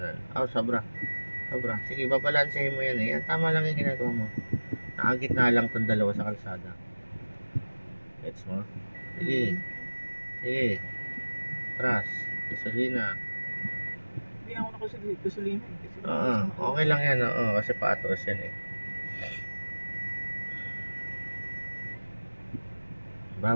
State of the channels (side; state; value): both; inverted; correlation -1.00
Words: Sobra. Sige, babalansehin mo yan eh. Yan, tama lang yung ginagawa mo. Nakagitna lang itong dalawa sa kalsada. Gets mo? Sige. Atras. Gasolina. Hindi ako nakasulina. Okay lang yan. Kasi paatras yan eh.